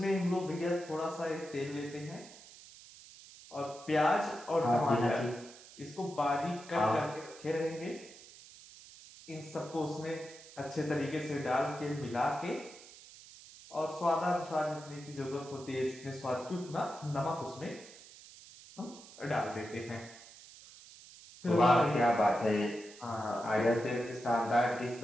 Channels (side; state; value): right; noise; hiss, 19 dB below the sound